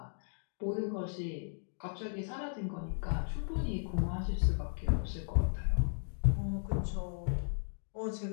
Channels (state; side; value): silent; right; digital silence